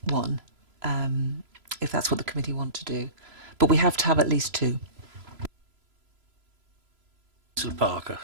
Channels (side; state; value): left; late; 3.0 ms